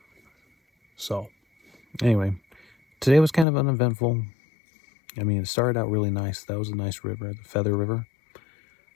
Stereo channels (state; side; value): drops out; right; at 3.5 s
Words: So anyway, today was kind of uneventful. I mean, it started out really nice. That was a nice river, the Feather River.